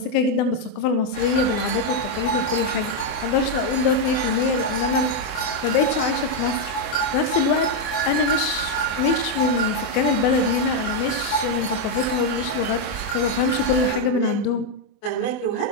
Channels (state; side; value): late; right; 24 ms